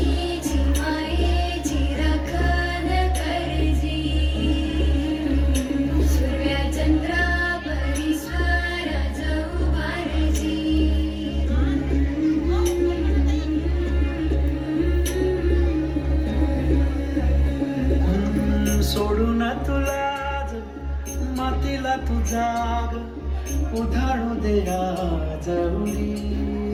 सोडून तुला मातीला तू जाग उधाळू दे आज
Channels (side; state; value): both; identical; correlation 1.00